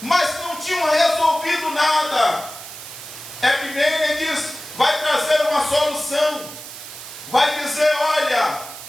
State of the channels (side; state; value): right; noise; hiss, 13 dB below the sound